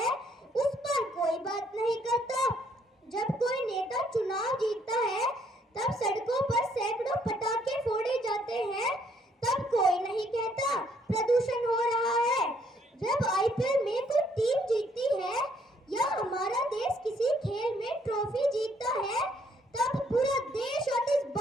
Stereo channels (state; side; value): normal; both; correlation 0.67